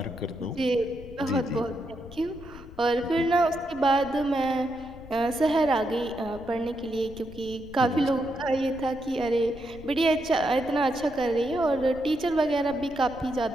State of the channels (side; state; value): left; noise; rumble, 17 dB below the sound